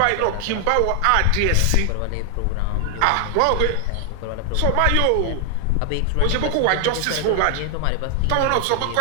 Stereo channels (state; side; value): different; both; correlation 0.00